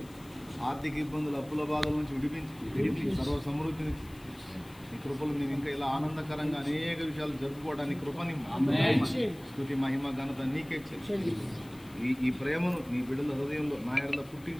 ఆర్థిక ఇబ్బందులు, అప్పుల బాధల నుంచి విడిపించి సర్వ సమృద్ధిని ఈ కృపలు మేము ఇంకా ఇలా ఆనందకరంగా అనేక విషయాలు జరుపుకోవడానికి కృపని స్తుతి మహిమ ఘనత నీకే చెల్లి. ఈ ప్రేమను నీ బిడ్డల హృదయంలో నా ఎడల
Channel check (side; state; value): left; noise; hiss, 24 dB below the sound